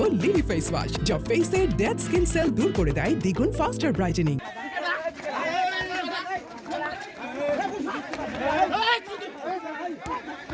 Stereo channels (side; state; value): both; identical; correlation 1.00